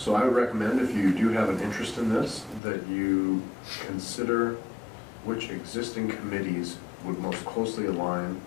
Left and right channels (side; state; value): right; drops out; at 2.6 s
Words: I would recommend, if you do have an interest in this, that you consider which existing committees would most closely align,